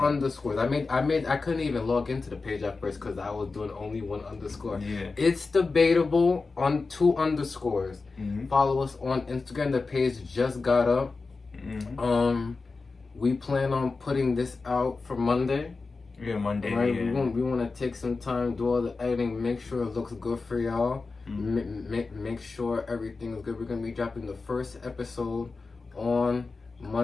I couldn't even log into the page at first because I was doing only one underscore. It's Debatable on 2 underscores. Follow us on Instagram. The page just got up. We plan on putting this out for Monday. Yeah, Monday. Right? Yeah. We want to take some time, do all the editing, make sure it looks good for y'all. Make sure everything is good. We're gonna be dropping the first episode on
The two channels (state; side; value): quieter; right; 4.1 dB